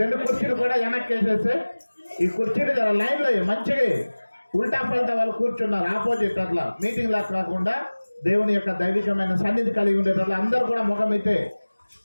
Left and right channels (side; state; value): both; inverted; correlation -1.00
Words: 2 కుర్చీలు కూడా వెనక్కి వేసేసి ఈ కుర్చీలు జర లైన్లో మంచిగా ఉల్టా పల్టా వాళ్ళు కూర్చున్నారు ఆపోజిట్, అట్లా మీటింగ్ లా కాకుండా దేవుని యొక్క దైవికమైన సన్నిధి కలిగి ఉండేటట్లు అందరూ కూడా ముఖం అయితే